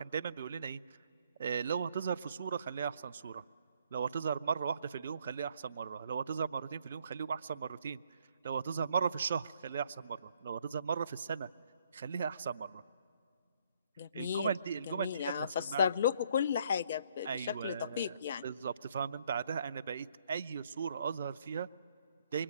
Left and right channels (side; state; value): both; inverted; correlation -0.67